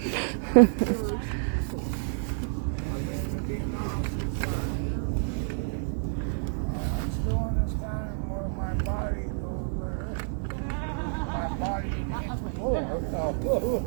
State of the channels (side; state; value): left; silent; 59 dB below the other